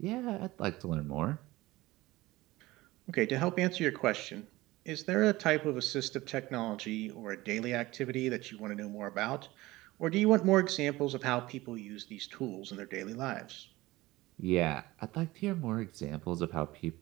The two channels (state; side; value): quieter; left; 19.0 dB